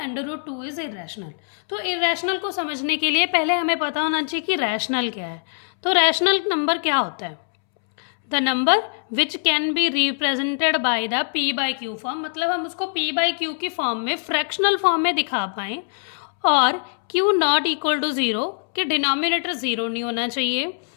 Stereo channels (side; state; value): right; silent; 64 dB below the other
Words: इज इरेशनल। तो इरेशनल को समझने के लिए पहले हमें पता होना चाहिए कि रैशनल क्या है। तो रैशनल नंबर क्या होता है? The number which can be represented by the p by Q form, मतलब हम उसको p बाई क्यू की फॉर्म में, फ्रैक्शनल फॉर्म में दिखा पाएँ, और q नॉट इक्वल टू 0 कि डिनोमिनेटर 0 नहीं होना चाहिए।